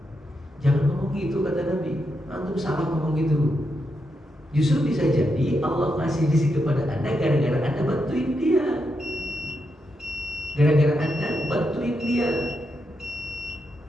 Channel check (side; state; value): both; normal; correlation 0.83